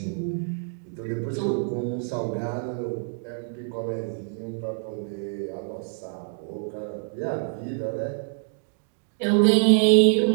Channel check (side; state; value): left; silent; 61 dB below the other